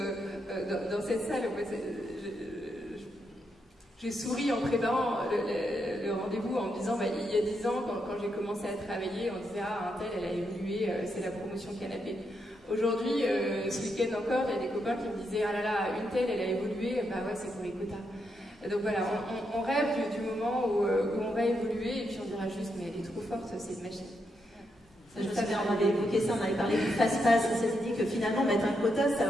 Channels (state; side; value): normal; both; correlation 0.81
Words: dans cette salle. J'ai souri en préparant le rendez-vous en me disant, il y a 10 ans, quand j'ai commencé à travailler, on disait, un tel, elle a évolué, c'est la promotion canapé. Aujourd'hui, ce week-end encore, il y a des copains qui me disaient, ah là là, une telle, elle a évolué, ouais, c'est pour les quotas. Donc voilà, on rêve du moment où on va évoluer, et puis on dira juste, mais elle est trop forte, c'est une machine. Ça, je savais, on avait évoqué ça, on avait parlé du fast-pass, on s'était dit que finalement, mettre un quota, ça